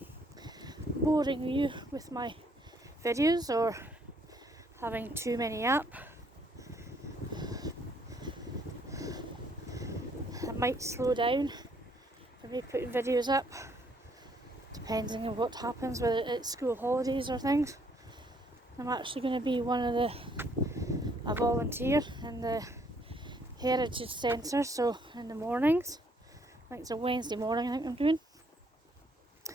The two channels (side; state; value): both; normal; correlation 0.67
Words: boring you with my videos or having too many up. I might slow down for me putting videos up, depending on what happens, whether it's school holidays or things. I'm actually going to be a volunteer in the Heritage Centre, so in the mornings. I think it's a Wednesday morning I think I'm doing.